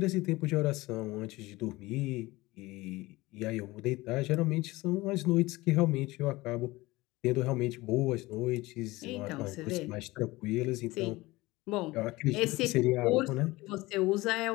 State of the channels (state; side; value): quieter; right; 20.4 dB